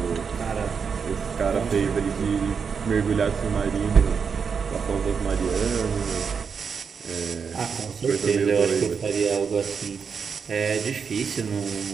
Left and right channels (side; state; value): left; quieter; 6.1 dB